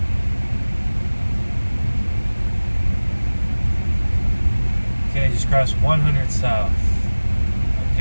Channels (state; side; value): inverted; both; correlation -1.00